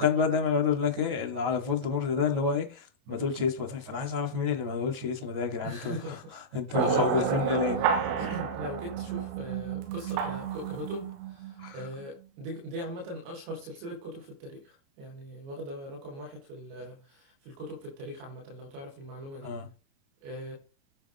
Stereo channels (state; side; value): late; left; 29 ms